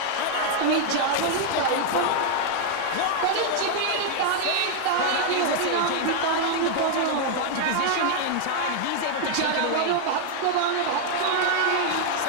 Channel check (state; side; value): different; both; correlation 0.00